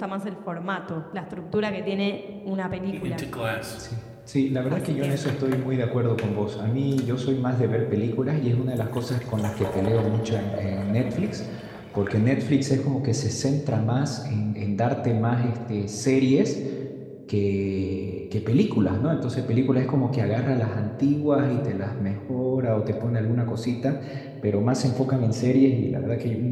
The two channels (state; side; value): identical; both; correlation 1.00